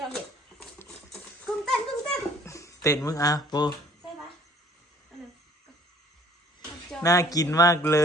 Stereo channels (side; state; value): both; normal; correlation 0.55